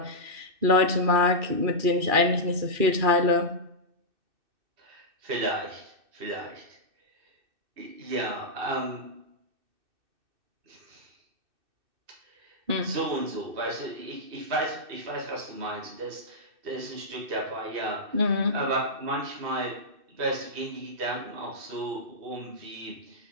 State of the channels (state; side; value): late; left; 2.6 ms